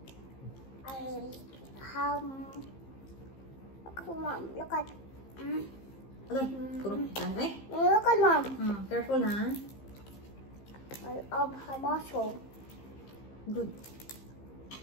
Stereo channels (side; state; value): right; late; 15 ms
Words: Look at Mom, look at. Okay, kurang ka. Eh? Look at Mom. Careful, ha? Of her muscle. Good.